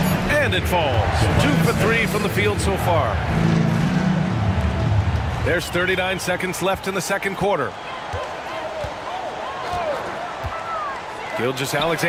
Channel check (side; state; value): both; identical; correlation 1.00